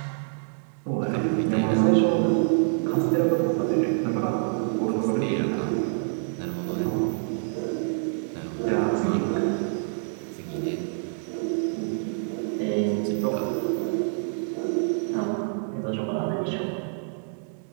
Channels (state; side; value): silent; left; digital silence